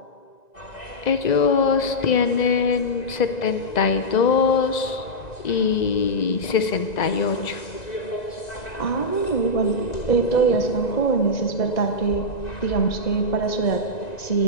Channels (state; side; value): late; right; 2.0 ms